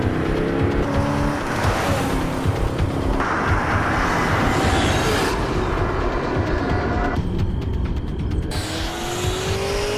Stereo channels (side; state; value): both; identical; correlation 1.00